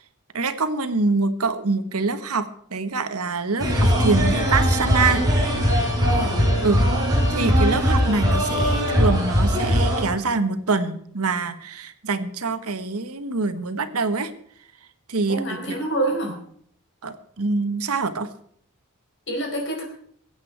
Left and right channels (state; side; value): normal; both; correlation 0.50